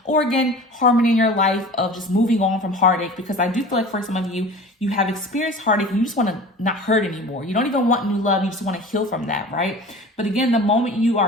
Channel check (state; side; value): normal; both; correlation 0.39